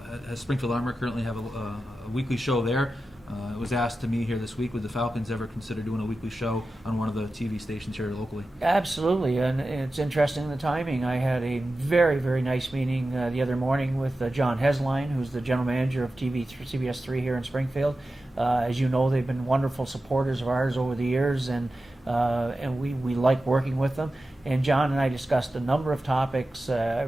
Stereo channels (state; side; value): normal; both; correlation 0.93